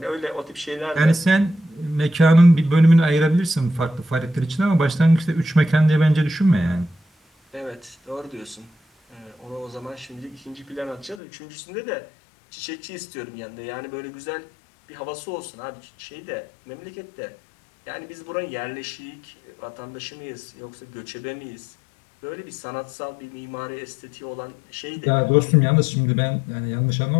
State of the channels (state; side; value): drops out; right; at 11.2 s